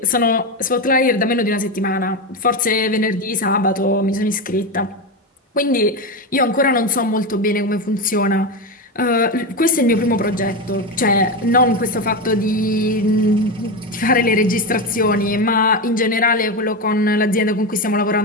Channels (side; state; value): both; normal; correlation 0.15